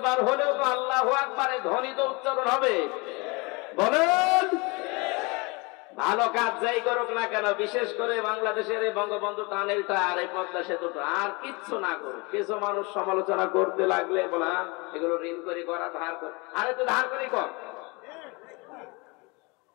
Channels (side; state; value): right; quieter; 27.8 dB